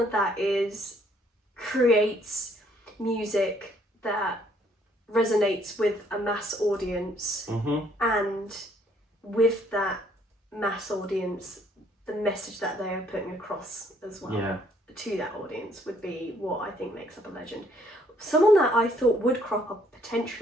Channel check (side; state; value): both; normal; correlation 0.66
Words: creates music that resonates with a mass audience, and with that mass audience, the message that they are putting across as well to that audience would be what I think makes up a legend. Someone that I thought would crop up